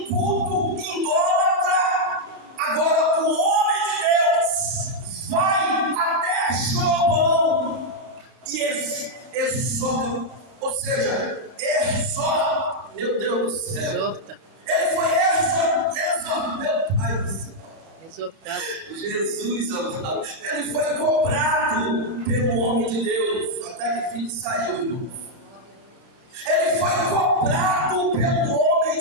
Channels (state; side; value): late; left; 31 ms